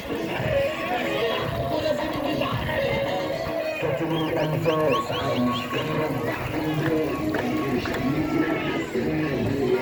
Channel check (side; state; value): both; identical; correlation 1.00